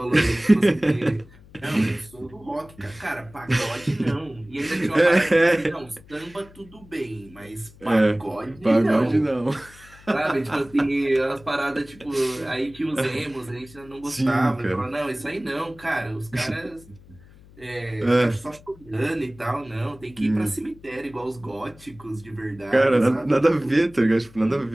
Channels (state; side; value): noise; left; hum, 23 dB below the sound